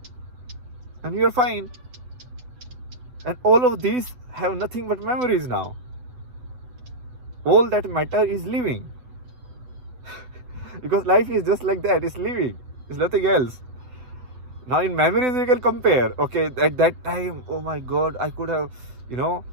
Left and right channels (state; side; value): late; left; 8.0 ms